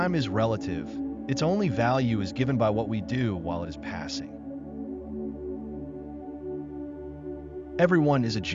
is relative. Its only value is given by what we do while it is passing. Everyone is a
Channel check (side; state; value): both; identical; correlation 1.00